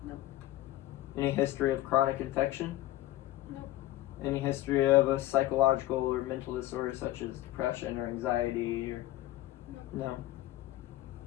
No. Any history of chronic infection? No. Any history of a psychological or mental disorder such as depression or anxiety or no?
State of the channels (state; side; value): quieter; right; 15.7 dB